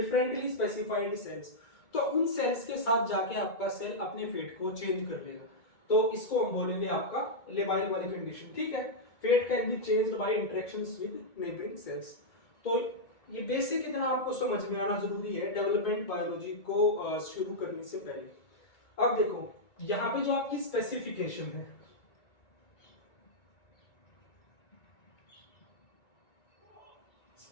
स्पेसिफाइड सेल्स। तो उन सेल्स के साथ जाके आपका सेल अपने फेट को चेंज कर लेगा। तो इसको हम बोलेंगे आपका लेबाइल वाली कंडीशन। ठीक है, fate can be changed by interactions with neighbouring cells. तो ये बेसिक इतना आपको समझ में आना जरूरी है डेवलपमेंट बायोलॉजी को शुरू करने से पहले। अब देखो यहाँ पे जो आपकी स्पेसिफिकेशन है,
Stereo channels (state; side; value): late; right; 2.2 ms